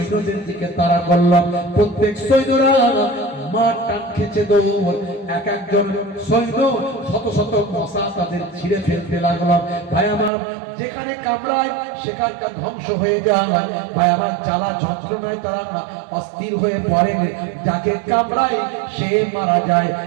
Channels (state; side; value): drops out; left; at 10.3 s